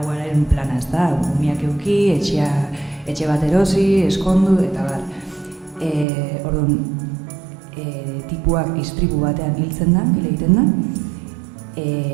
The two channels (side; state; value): left; drops out; at 6.1 s